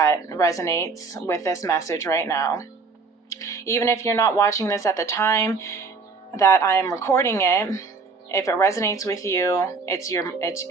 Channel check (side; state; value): left; quieter; 4.5 dB